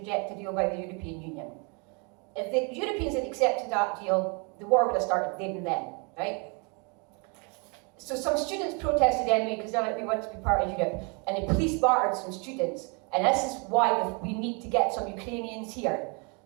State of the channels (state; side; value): quieter; left; 33.7 dB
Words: a deal by the European Union. If the Europeans had accepted that deal, the war would have started then and then, right? So some students protested anyway because they're like, we want to be part of Europe, and the police bartered some students, and this is why we need to get some Ukrainians here,